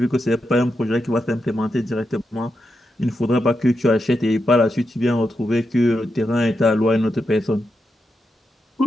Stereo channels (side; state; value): both; normal; correlation 0.86